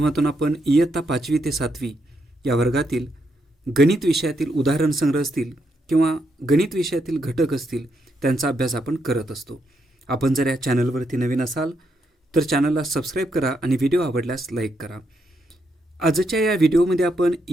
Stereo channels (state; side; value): normal; both; correlation 0.79